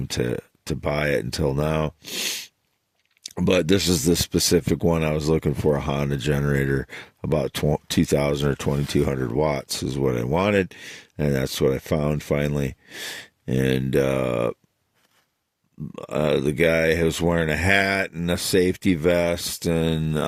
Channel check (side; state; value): both; identical; correlation 1.00